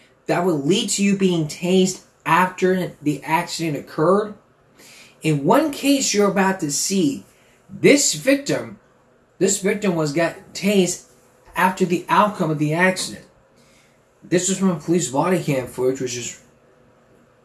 that would lead to you being tased after the accident occurred? In one case you're about to see, this victim got tased after the outcome of the accident. This was from police body cam footage,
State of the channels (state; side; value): identical; both; correlation 1.00